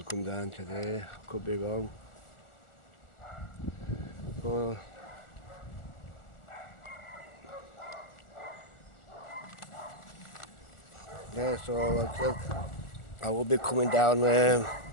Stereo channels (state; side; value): late; right; 1.4 ms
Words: come down today, could be wrong. Well, yeah, so like I said, I will be coming down